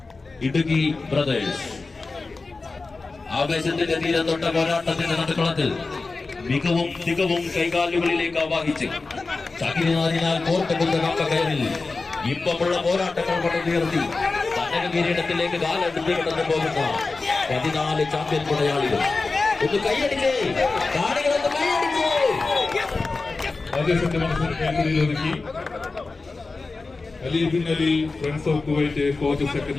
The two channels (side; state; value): right; quieter; 3.8 dB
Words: ഇടുക്കി ബ്രദേഴ്സ്. ആവേശത്തിന്റെ തീരം തൊട്ട പോരാട്ടത്തിന്റെ നടുക്കളത്തിൽ മികവും തികവും കൈകാലുകളിലേക്ക് ആവാഹിച്ച് ചകിരിനാരിനാൽ കോർത്തുകൊണ്ട കയറിൽ ഇമ്പമുള്ള പോരാട്ടങ്ങൾ പടുതുയർത്തി തന്റെ കിരീടത്തിലേക്ക് കാലെടുത്ത് കിടന്നു പോകുന്ന 14 ചാമ്പ്യൻ പടയാളികൾ. ഒന്ന് കൈയടിച്ചേ, കാണികളൊന്ന് കൈയടിച്ചേ. ആദ്യത്തെ മത്സരത്തിൽ ഒതുക്കി Ali bin Ali friends of Kuwait coach